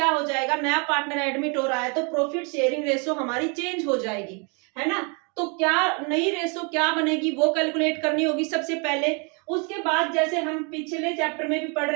हो जाएगा, नया पार्टनर एडमिट हो रहा है तो प्रॉफिट शेयरिंग रेशो हमारी चेंज हो जाएगी, है ना। तो क्या नई रेशो क्या बनेगी वो कैलकुलेट करनी होगी सबसे पहले। उसके बाद जैसे हम पिछले चैप्टर में भी पढ़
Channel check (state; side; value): quieter; left; 34.2 dB